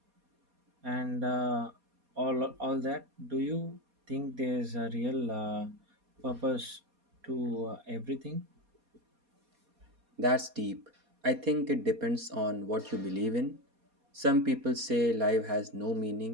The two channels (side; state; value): left; late; 4.2 ms